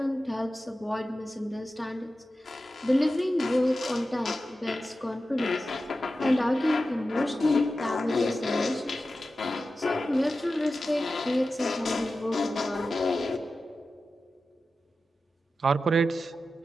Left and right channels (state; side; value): normal; both; correlation 0.93